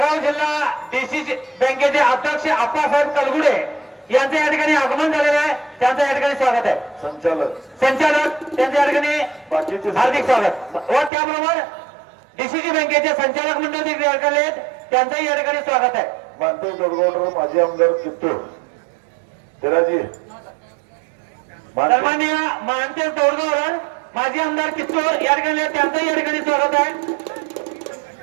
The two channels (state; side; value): drops out; left; at 11.1 s